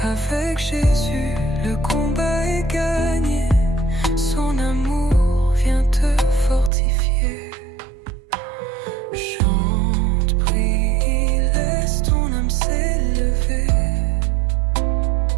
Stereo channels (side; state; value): left; drops out; at 6.7 s